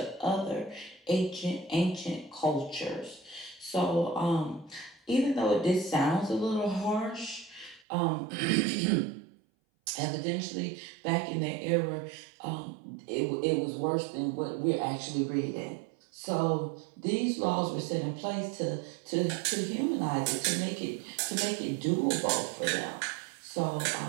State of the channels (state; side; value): drops out; left; at 7.9 s